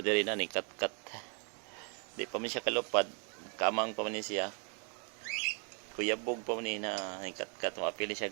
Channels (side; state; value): left; quieter; 38.8 dB